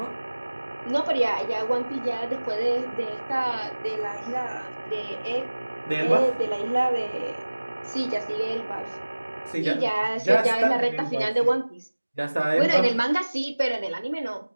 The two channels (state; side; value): inverted; both; correlation -1.00